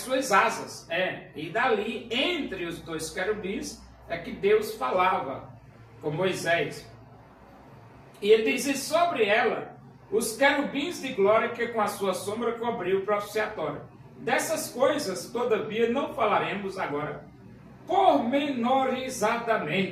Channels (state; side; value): identical; both; correlation 1.00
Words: asas. E dali, entre os 2 querubins, é que Deus falava com Moisés. E ele diz, e sobre ela os querubins de glória que com a sua sombra cobriu o propiciatório. Dessas coisas, todavia, não falaremos agora